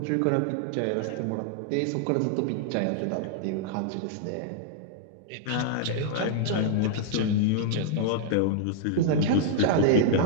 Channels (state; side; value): different; both; correlation -0.01